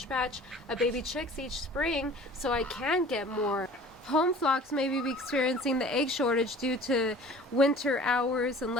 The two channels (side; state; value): both; normal; correlation 0.45